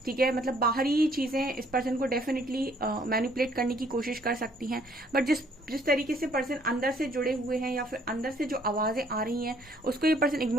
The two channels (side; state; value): both; normal; correlation 0.63